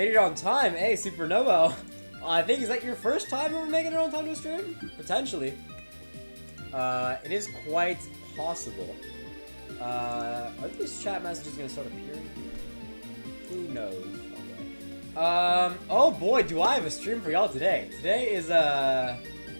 it on time. Hey, Supernova. I think, is that your first time ever making it on time to a stream? Potentially. It is quite possible. Are these chat messages gonna start appearing? Who knows? Oh boy, do I have a stream for y'all today. Today is, I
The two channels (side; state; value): both; inverted; correlation -1.00